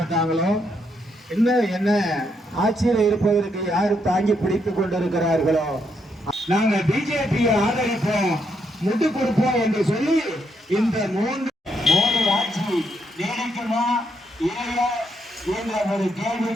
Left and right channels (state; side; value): normal; both; correlation 0.77